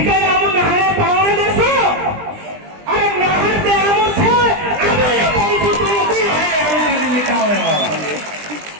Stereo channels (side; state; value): left; late; 20 ms